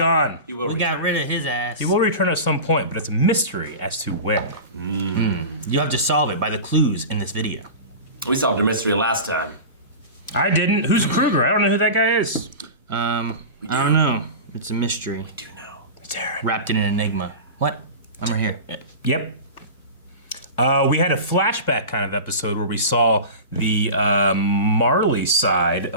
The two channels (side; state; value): both; inverted; correlation -0.30